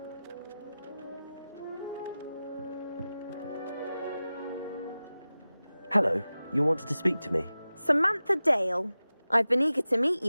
Hello, you wanted to speak to me? Samantha Dale. I've been eager to meet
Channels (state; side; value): inverted; both; correlation -0.95